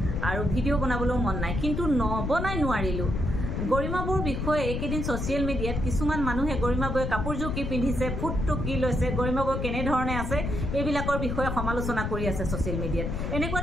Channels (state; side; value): noise; left; rumble, 2 dB below the sound